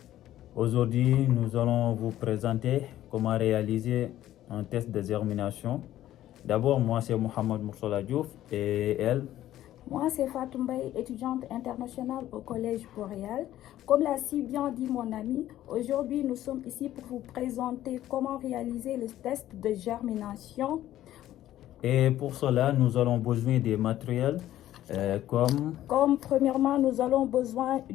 Aujourd'hui, nous allons vous présenter comment réaliser un test de germination. D'abord, moi c'est Mohamed Moursala Diouf et elle. Moi, c'est Fatou Mbaye, étudiante internationale au Collège Boréal. Comme l'a si bien dit mon ami, aujourd'hui nous sommes ici pour vous présenter comment réaliser le test de germination. Et pour cela, nous allons besoin des matériels Comme premièrement, nous allons besoin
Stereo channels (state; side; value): quieter; right; 13.3 dB